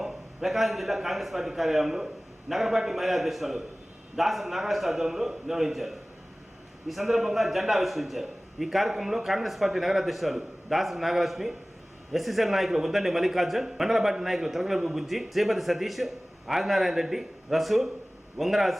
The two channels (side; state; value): both; normal; correlation 0.98